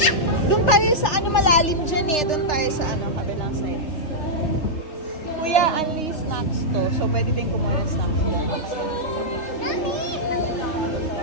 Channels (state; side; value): late; right; 3.3 ms